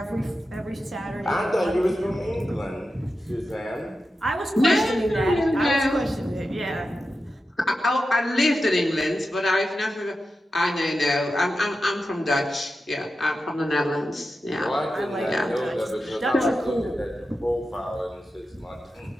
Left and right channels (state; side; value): normal; both; correlation 0.91